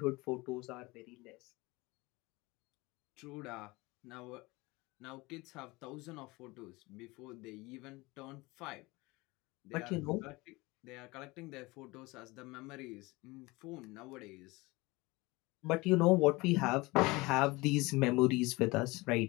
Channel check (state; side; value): quieter; right; 22.9 dB